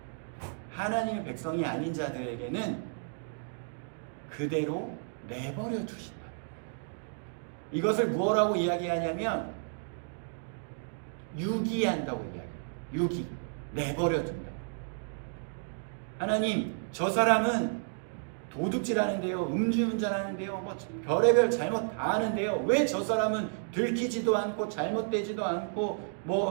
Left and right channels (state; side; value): silent; left; digital silence